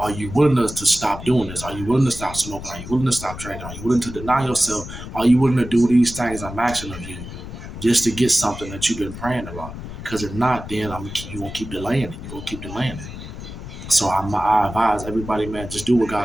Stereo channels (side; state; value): left; noise; rumble, 11 dB below the sound